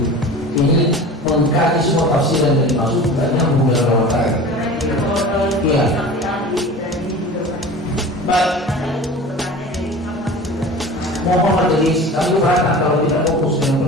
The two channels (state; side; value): normal; both; correlation 0.38